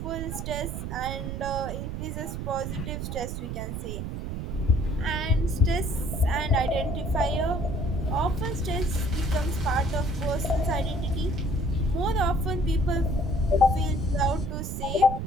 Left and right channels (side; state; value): right; noise; rumble, 5 dB below the sound